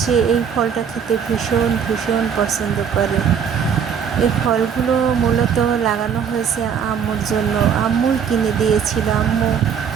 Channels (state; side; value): quieter; left; 7.4 dB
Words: এই ফলটা খেতে ভীষণ ভীষণ পছন্দ করে। এই ফলগুলো মূলত লাগানো হয়েছে আম্মুর জন্য। আম্মুই কিনে দিয়েছিল। আম্মু